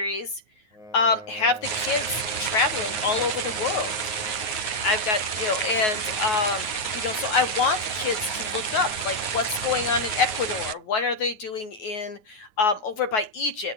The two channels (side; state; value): right; late; 9.4 ms